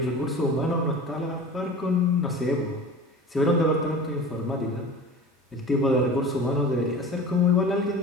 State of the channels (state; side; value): normal; both; correlation 0.37